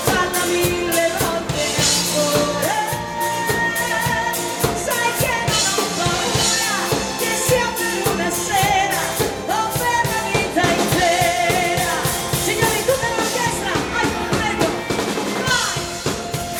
falla 1000 volte ancora. Sai che non ho paura, che sia per una sera o per la vita intera. Signori, tutta l'orchestra, vai, prego, vai!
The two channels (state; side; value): identical; both; correlation 1.00